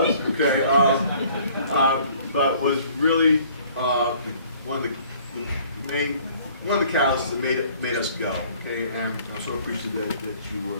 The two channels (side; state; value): both; inverted; correlation -0.56